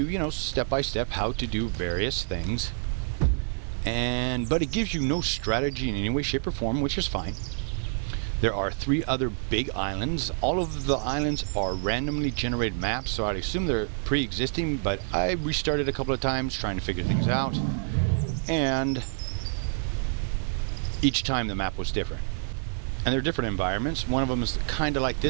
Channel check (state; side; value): silent; left; digital silence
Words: step by step how to do various things. But it gives you no strategy in any way, shape, or form, which is fine. There are 3 other big islands. All of the islands are randomly generated maps, so I'd assume they're pre-existing, but I restarted a couple of times trying to figure things out. And each time the map was different. And they're different environments. One of them is kind of like